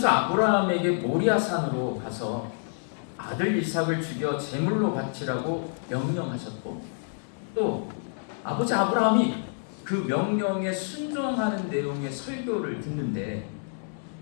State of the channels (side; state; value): right; silent; digital silence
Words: 아브라함에게 모리아산으로 가서 아들 이삭을 죽여 제물로 바치라고 명령하셨고, 또 아버지 아브라함이 그 명령에 순종하는 내용의 설교를 듣는데